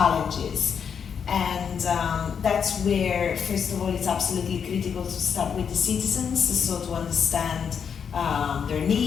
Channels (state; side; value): quieter; right; 7.1 dB